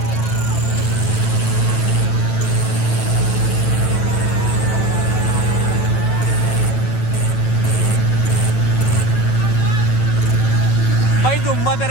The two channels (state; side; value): late; right; 9.1 ms